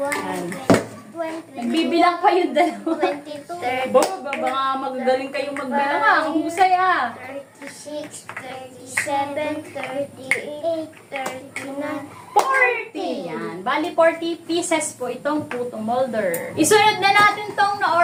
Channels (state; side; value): identical; both; correlation 1.00